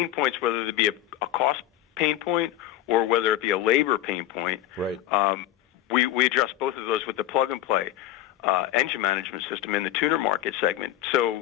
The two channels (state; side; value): quieter; right; 13.3 dB